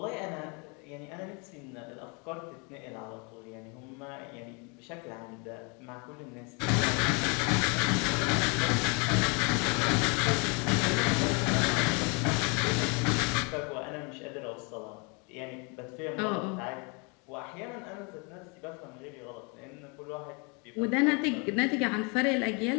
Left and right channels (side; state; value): right; quieter; 32.8 dB